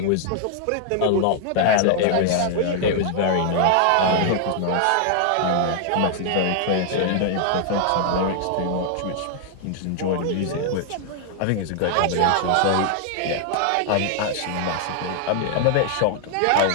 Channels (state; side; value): different; both; correlation 0.00